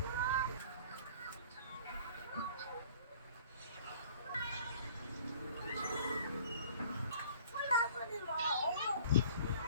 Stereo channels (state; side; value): inverted; both; correlation -0.49